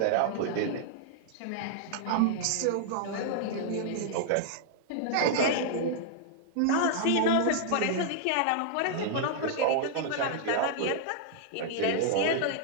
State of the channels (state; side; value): different; both; correlation -0.01